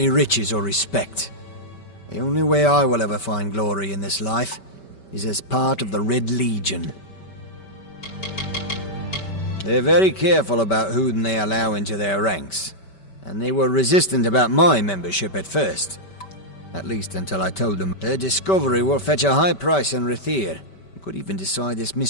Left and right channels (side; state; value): right; late; 5.2 ms